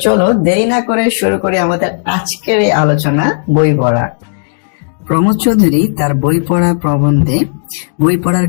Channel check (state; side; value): silent; right; digital silence